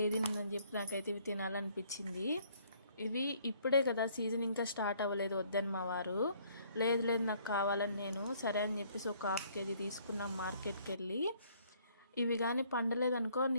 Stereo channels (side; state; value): both; inverted; correlation -0.62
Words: ఉందని చెప్పి నాకైతే ఇవి తినాలనిపించింది. ఇవి ఇప్పుడే కదా సీజన్, ఇంకా స్టార్ట్ అవ్వలేదు వద్దని మా వారు. లేదు లేదు నాకు కావాలని నేను సరే అని చెప్పేసి ఒక 1/2 కేజీ తీసుకున్నాం మార్కెట్కి వెళ్ళి. ఇవి కానీ పండలేదనుకో